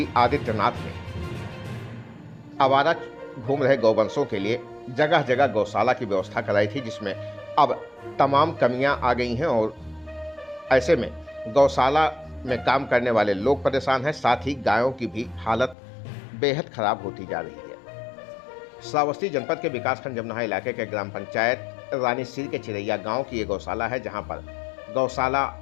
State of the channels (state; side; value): drops out; right; at 15.8 s